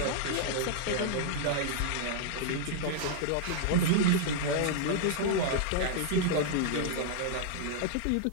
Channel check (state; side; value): different; both; correlation -0.01